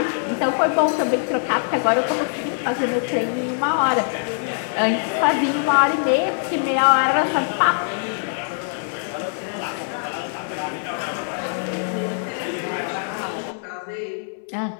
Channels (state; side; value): silent; right; 64 dB below the other